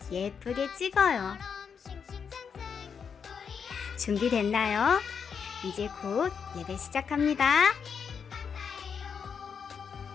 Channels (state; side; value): quieter; right; 6.6 dB